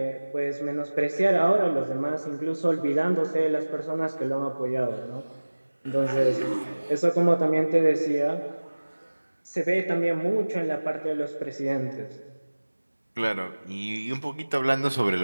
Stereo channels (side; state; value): both; inverted; correlation -1.00